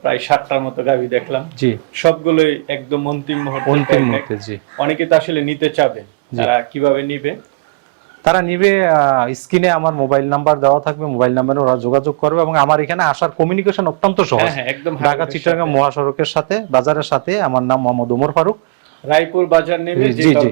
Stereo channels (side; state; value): left; quieter; 26.1 dB